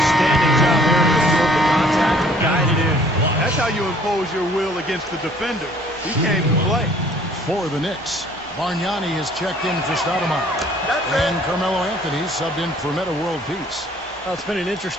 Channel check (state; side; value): normal; both; correlation 0.57